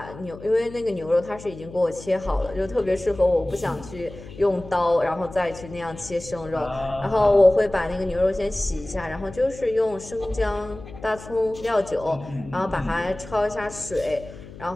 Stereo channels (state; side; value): noise; left; hum, 16 dB below the sound